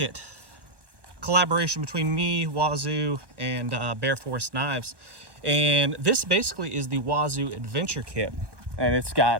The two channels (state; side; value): late; left; 1.2 ms